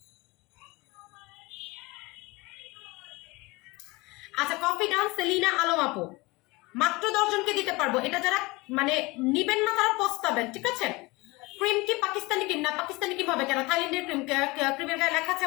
আচ্ছা কফি ডান। সেলিনা আলম আপু মাত্র 10 জনকে দিতে পারবো। এটা যারা মানে নিবেন না তারা পস্তাবেন, ঠিক আছে? ক্রিম কি পাকিস্তানি ক্রিম? না পাকিস্তানি ক্রিম হবে কেন? থাইল্যান্ডের ক্রিম, ক্রিমের গায়ে লেখা আছে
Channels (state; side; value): quieter; right; 23.5 dB